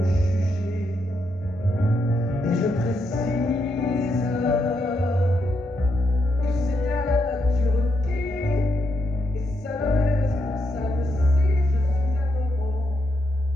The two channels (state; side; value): normal; both; correlation 0.81